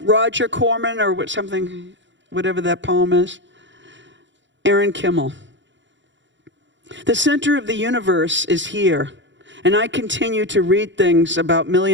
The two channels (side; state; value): left; late; 0.54 ms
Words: Roger Corman or whatever that poem is. Erin Kimmel. The center of the universe is here, and I continue to read things about